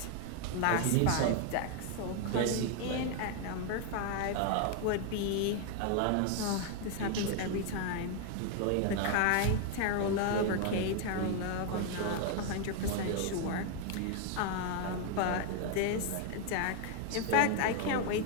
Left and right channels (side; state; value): both; different; correlation 0.00